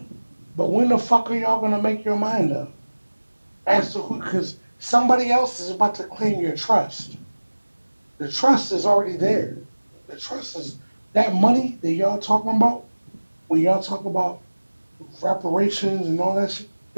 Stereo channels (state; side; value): inverted; both; correlation -1.00